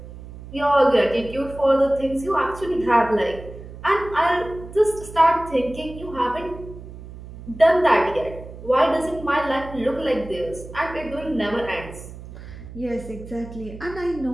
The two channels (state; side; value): noise; right; hum, 14 dB below the sound